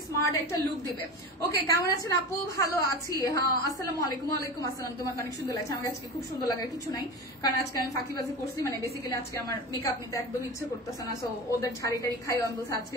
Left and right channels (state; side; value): normal; both; correlation 0.28